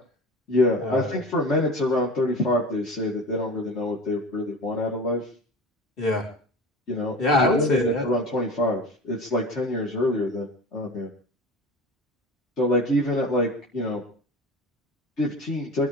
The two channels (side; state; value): both; normal; correlation 0.34